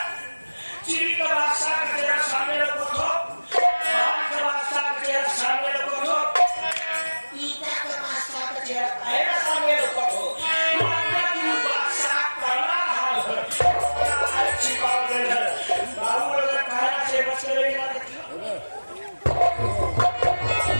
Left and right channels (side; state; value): both; inverted; correlation -1.00